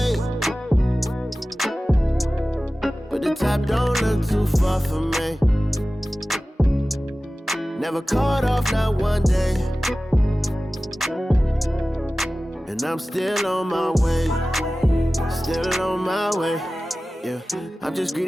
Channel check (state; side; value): normal; both; correlation 0.96